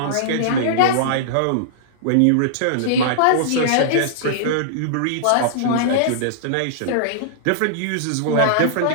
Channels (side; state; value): both; different; correlation -0.02